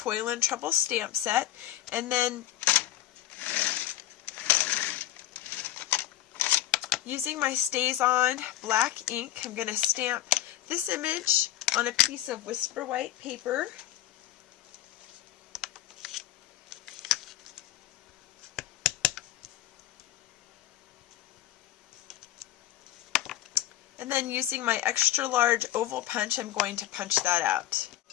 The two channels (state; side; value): quieter; right; 13.5 dB